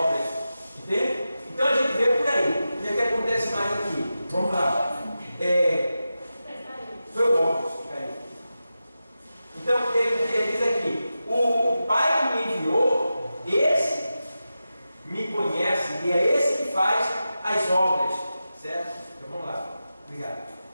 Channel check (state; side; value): inverted; both; correlation -0.92